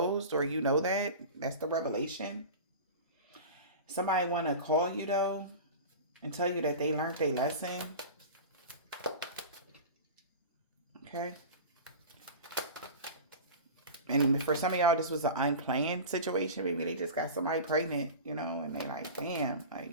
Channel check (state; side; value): inverted; both; correlation -0.32